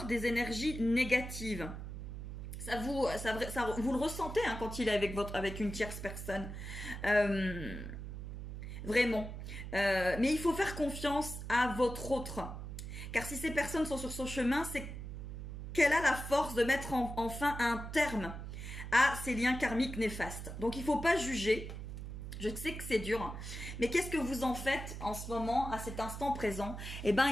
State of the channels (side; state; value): right; noise; hum, 8 dB below the sound